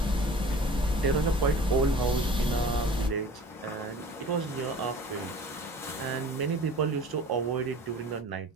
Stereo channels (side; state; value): both; normal; correlation 0.43